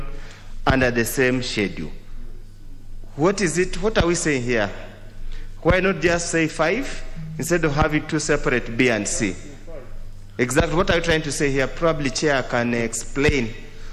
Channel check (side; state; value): both; identical; correlation 1.00